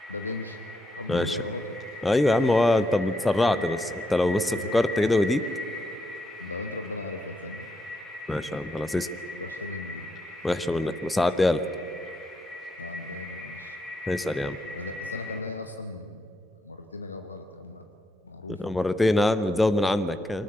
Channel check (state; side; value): normal; both; correlation 0.80